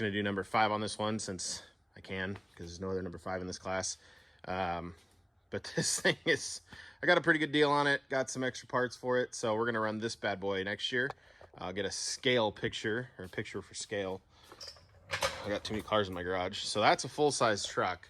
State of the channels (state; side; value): identical; both; correlation 1.00